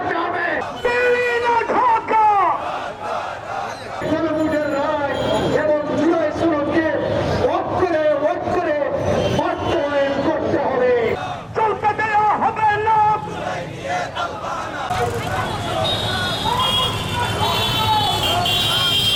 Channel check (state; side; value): identical; both; correlation 1.00